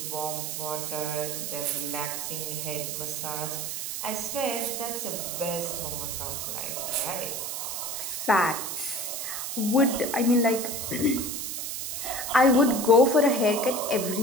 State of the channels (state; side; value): noise; right; hiss, 4 dB below the sound